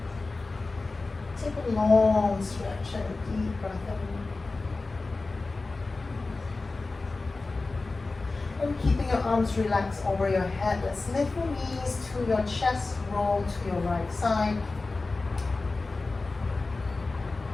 Take a long stretch and a deep breath in. And keeping your arms relaxed over your head, let's lift your knees to your chest, roll to your right side.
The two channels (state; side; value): quieter; right; 3.6 dB